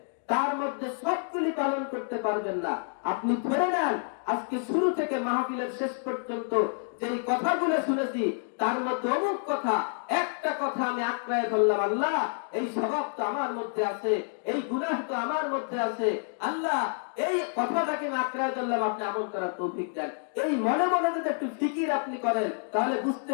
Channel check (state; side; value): silent; right; 57 dB below the other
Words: তার মধ্যে সবগুলি পালন করতে পারবেন না। আপনি ধরে নেন আজকে শুরু থেকে মাহফিলের শেষ পর্যন্ত যেই কথাগুলো শুনেছি তার মধ্যে অমুক কথা, একটা কথা আমি আঁকড়ায় ধরলাম, আল্লাহ এই স্বভাব তো আমার মধ্যে আছে, এই গুনাহ তো আমার মধ্যে আছে, আল্লাহ এই কথাটাকে আঁকড়ায় ধরলাম, আপনি আমল করার তৌফিক দেন। এই মনে মনে যদি একটু ফিকির আপনি করেন তাহলে বুঝতে